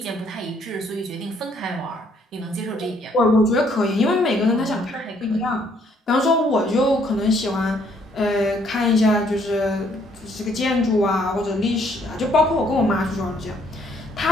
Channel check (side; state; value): both; normal; correlation 0.66